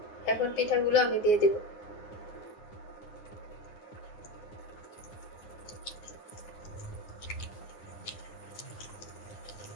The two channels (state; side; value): late; right; 9.6 ms